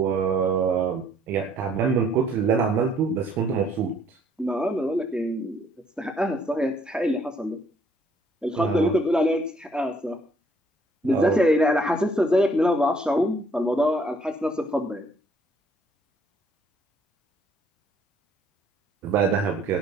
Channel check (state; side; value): normal; both; correlation 0.64